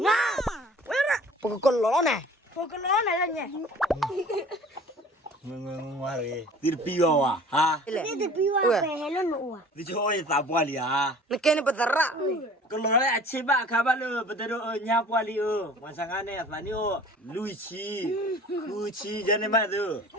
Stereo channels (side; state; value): both; normal; correlation 0.46